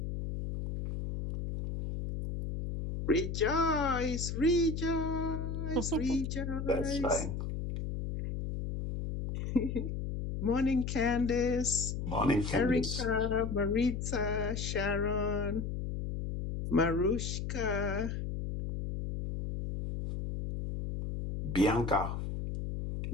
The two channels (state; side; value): noise; left; hum, 4 dB below the sound